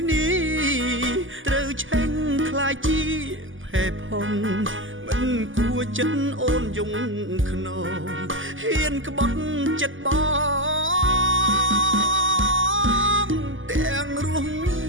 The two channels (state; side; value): late; left; 0.58 ms